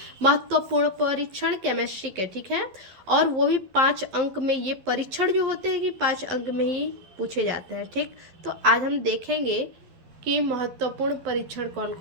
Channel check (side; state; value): left; late; 12 ms